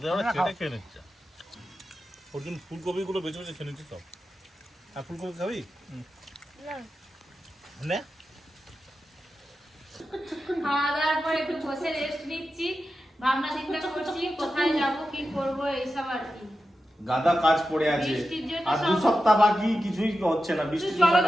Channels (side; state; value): both; normal; correlation 0.91